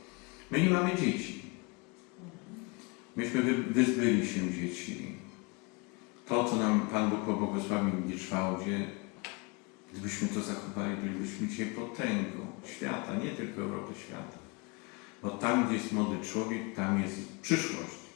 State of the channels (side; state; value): right; quieter; 29.5 dB